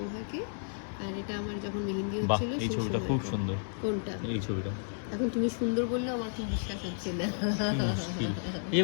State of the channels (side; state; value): right; silent; digital silence